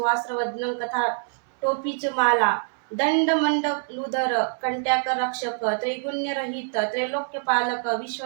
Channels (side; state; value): left; silent; 62 dB below the other